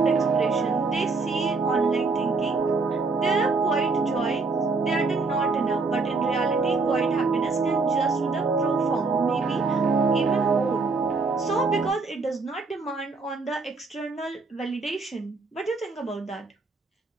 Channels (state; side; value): quieter; left; 4.0 dB